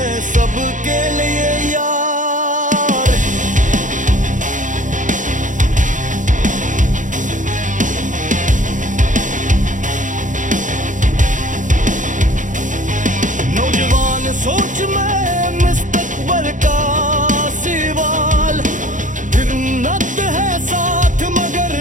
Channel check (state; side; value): late; left; 0.37 ms